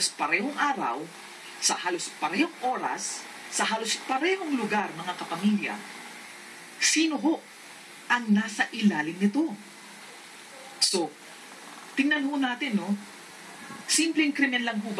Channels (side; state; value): both; identical; correlation 1.00